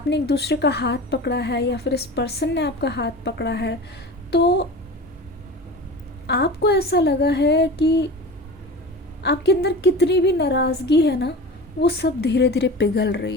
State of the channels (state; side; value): normal; both; correlation 0.34